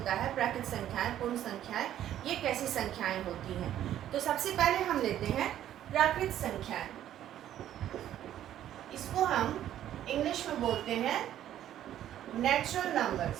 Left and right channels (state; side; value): quieter; left; 11.6 dB